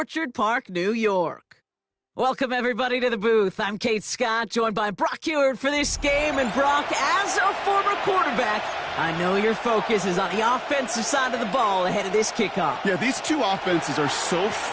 Park, New York. Welcome, everybody, to the booth. I'm Kate Scott, joined by Brock Ewert for this game. And Brock, as a former quarterback, I know your focus is on the offensive side of the ball ahead of this kickoff. Yeah, these two offenses are so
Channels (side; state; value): both; identical; correlation 1.00